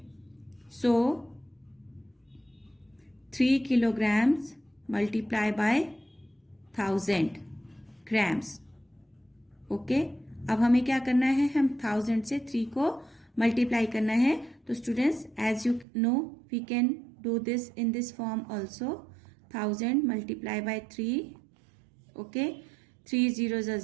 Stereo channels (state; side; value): drops out; left; at 15.9 s